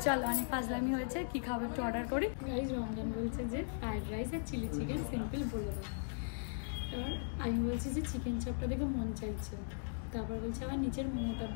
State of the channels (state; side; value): silent; right; digital silence